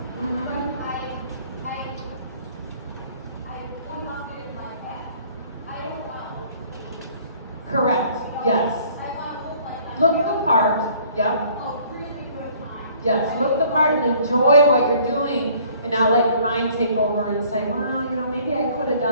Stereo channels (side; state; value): both; inverted; correlation -0.57